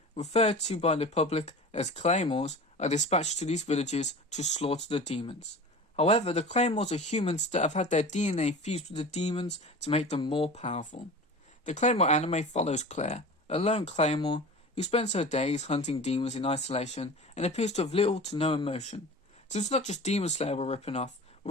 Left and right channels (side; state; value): both; normal; correlation 0.36